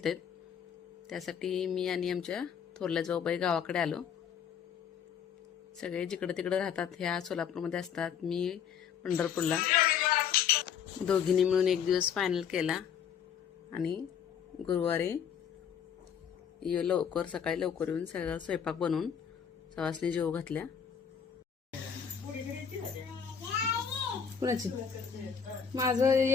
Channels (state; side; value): quieter; right; 7.7 dB